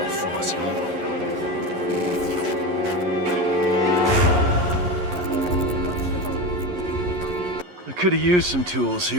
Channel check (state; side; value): late; left; 11 ms